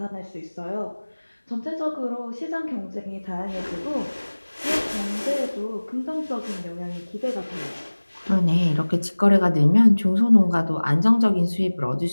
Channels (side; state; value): both; inverted; correlation -1.00